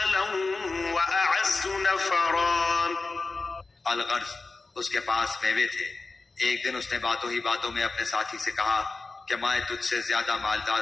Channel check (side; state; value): right; quieter; 3.7 dB